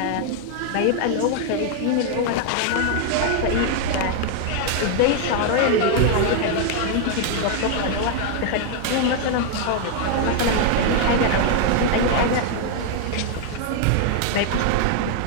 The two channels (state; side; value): different; both; correlation 0.00